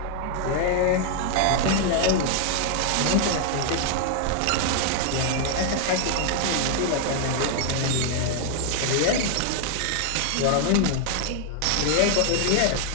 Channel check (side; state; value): both; different; correlation 0.00